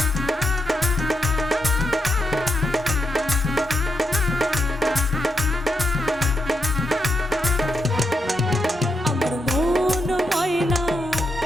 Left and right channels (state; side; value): normal; both; correlation 0.83